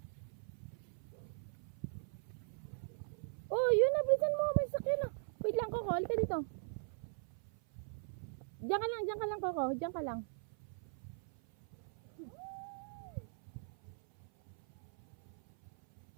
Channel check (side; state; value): left; silent; 51 dB below the other